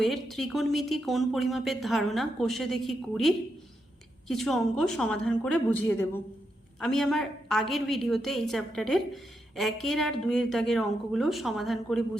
ত্রিকোণমিতি কোণ পরিমাপের ধারণা কোষে দেখি 20 কিছু অঙ্ক সমাধান করে বুঝিয়ে দেব। আমি আমার আগের ভিডিওতে এই চ্যাপ্টারের 1 আর 2 দাগের অঙ্কগুলো সমাধান করে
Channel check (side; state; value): both; normal; correlation 0.83